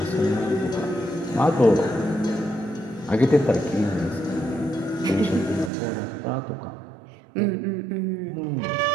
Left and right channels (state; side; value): drops out; left; at 5.7 s